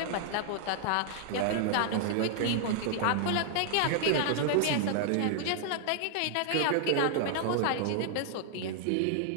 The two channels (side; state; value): both; different; correlation -0.01